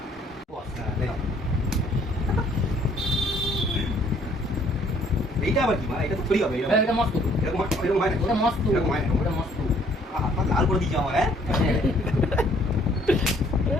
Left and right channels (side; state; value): both; normal; correlation 0.62